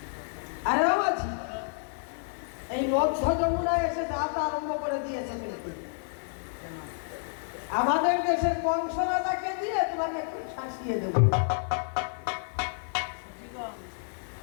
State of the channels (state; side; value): silent; right; digital silence